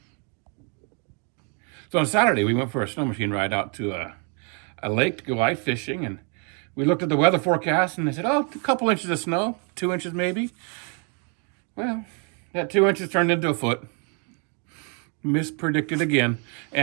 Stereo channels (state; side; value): quieter; left; 38.1 dB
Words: So on Saturday, we went for a snow machine ride out to a lake to go ice fishing, and we looked at the weather forecast, and they said, oh, a couple inches of snow, 2 inches maybe. Well, that 2 inches turned into a foot. Mispredicted again.